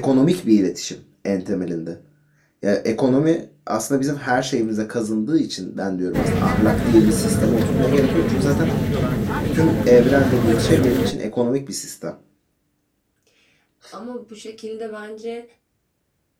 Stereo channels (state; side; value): identical; both; correlation 1.00